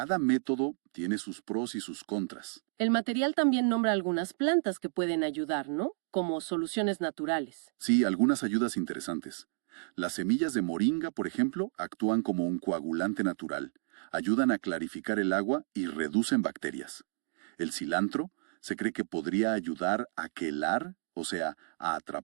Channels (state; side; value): silent; left; digital silence